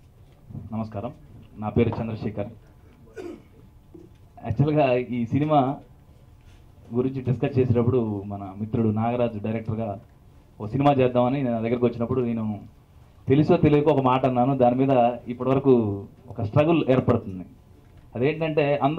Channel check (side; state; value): both; identical; correlation 1.00